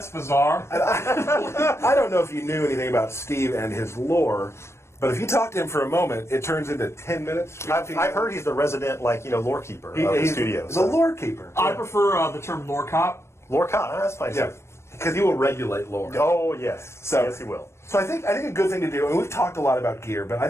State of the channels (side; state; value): right; late; 0.13 ms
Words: bizarre." I don't know if you knew anything about Steve and his lore, but if you talk to him for a moment, it turns into 10 minutes. I've heard he's the resident lore keeper of the studio. The lore keeper. I prefer the term lore cop. Lore cop. That's fine. Yeah, because he will regulate lore. Oh yes. Yes, he will. So I think a good thing to do, and we've talked a lot about gear, but I